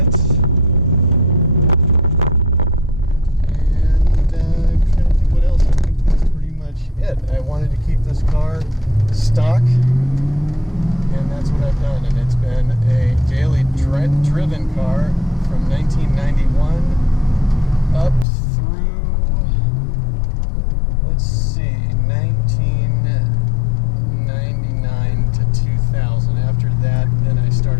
And I'm trying to think what else. I think that's pretty much it. I wanted to keep this car stock, and that's what I've done. And it's been a daily driven car from 1991 up through, let's see, 1999 to 2000. After that, then I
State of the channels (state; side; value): drops out; right; at 18.2 s